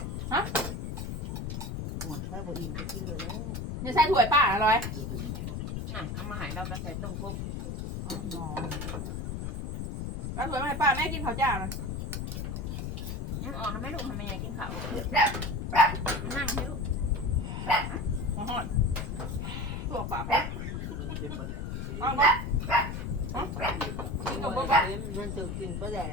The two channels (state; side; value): noise; left; rumble, 4 dB below the sound